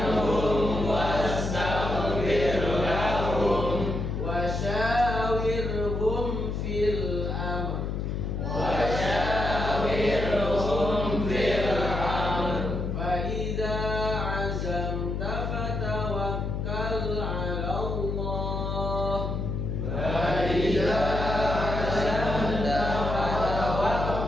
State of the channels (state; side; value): noise; left; hum, 2 dB below the sound